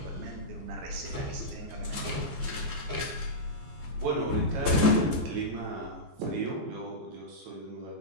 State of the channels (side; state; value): left; late; 14 ms